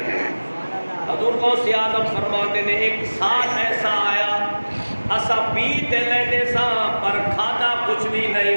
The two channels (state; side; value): inverted; both; correlation -1.00